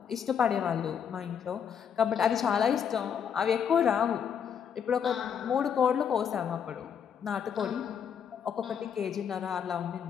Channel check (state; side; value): quieter; right; 7.8 dB